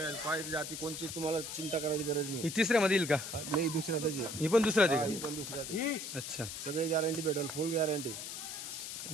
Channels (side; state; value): left; noise; hiss, 7 dB below the sound